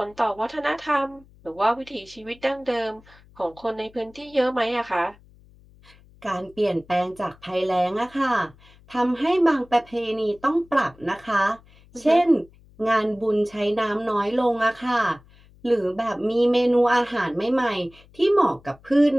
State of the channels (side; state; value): left; noise; hum, 26 dB below the sound